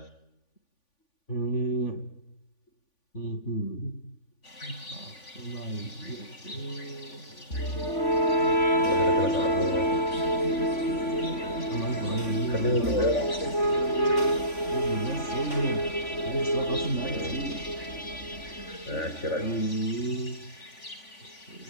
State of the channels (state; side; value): late; right; 3.5 ms